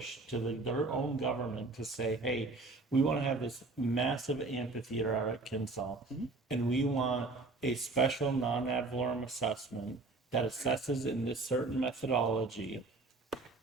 to their own government to say, hey, we want to have this massive amphitheater out at Kinsall, and we want a special non-ad valorem assessment that assesses in this certain methodology,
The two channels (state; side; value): quieter; left; 3.5 dB